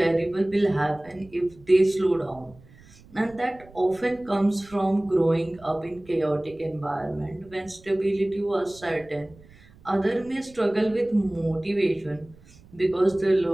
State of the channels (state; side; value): noise; right; rumble, 25 dB below the sound